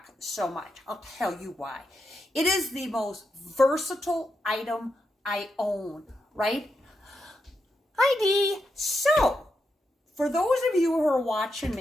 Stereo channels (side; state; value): both; normal; correlation 0.85